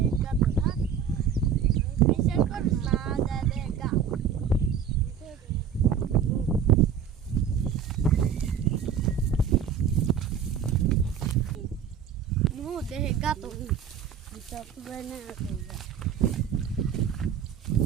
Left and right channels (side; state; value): left; quieter; 7.6 dB